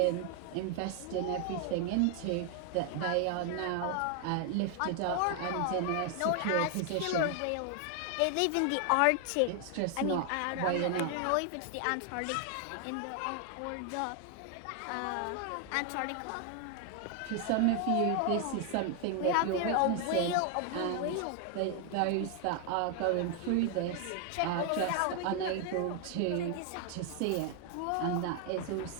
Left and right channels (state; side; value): different; both; correlation 0.00